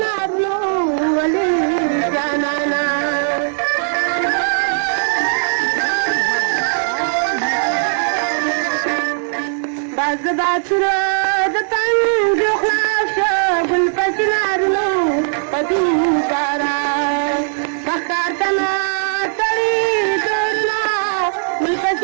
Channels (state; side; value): silent; left; digital silence